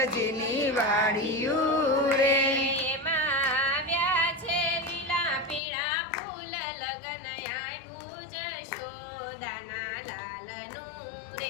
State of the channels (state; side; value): drops out; right; at 5.6 s